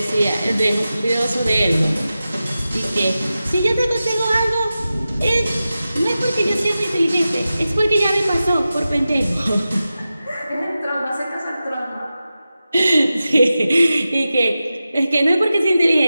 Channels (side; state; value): both; inverted; correlation -0.93